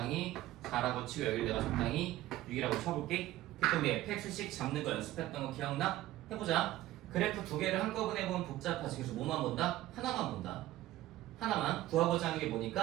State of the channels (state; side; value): quieter; left; 15.5 dB